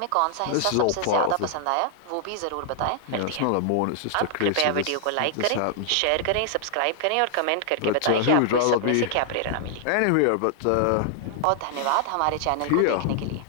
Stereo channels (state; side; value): different; both; correlation 0.00